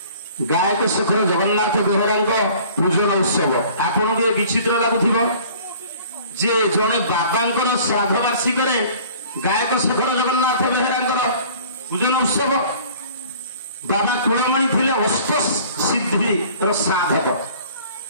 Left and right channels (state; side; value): inverted; both; correlation -0.49